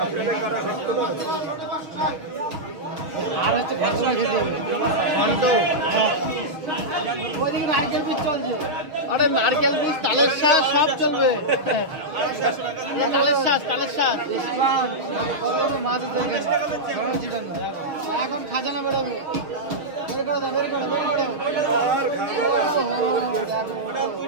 আর হচ্ছে নারকেল পিস চলছে। আরে নারকেল পিস, তালের শাঁস সব চলবে, তালের শাঁস, তালের শাঁস মাছ এখন খাজানা বেরোবে।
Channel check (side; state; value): left; late; 6.4 ms